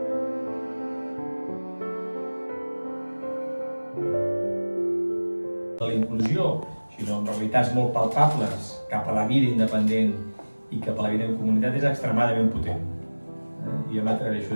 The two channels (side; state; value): both; inverted; correlation -1.00